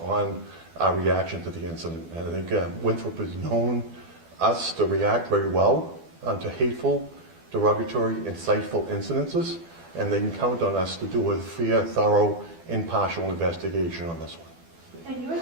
on our reaction to the incident. And I think Winthrop has known us to react very well to hateful, derogatory, insightful incidences, and they can count on us to do a fair, thorough, impartial investigation on this one. And you were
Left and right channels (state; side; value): late; left; 12 ms